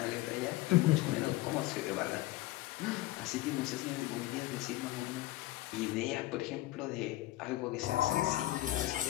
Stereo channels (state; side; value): quieter; right; 17.1 dB